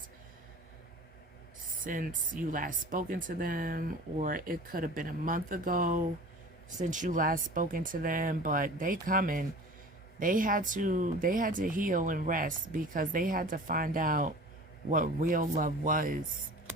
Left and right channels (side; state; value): both; normal; correlation 0.40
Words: since you last spoken to them, or it could have been a month ago since you last spoken to them. But they coming. They had to heal and rest, because they had to find out what real love was,